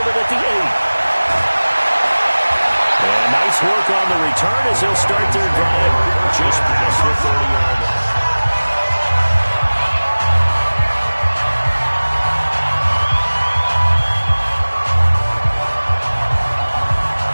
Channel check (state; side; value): inverted; both; correlation -1.00